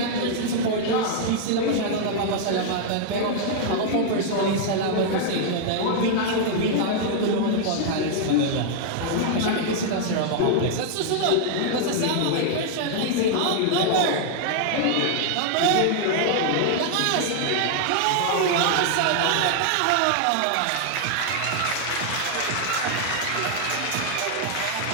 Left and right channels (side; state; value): both; different; correlation -0.01